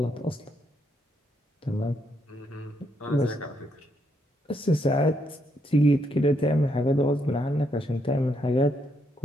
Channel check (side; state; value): both; normal; correlation 0.76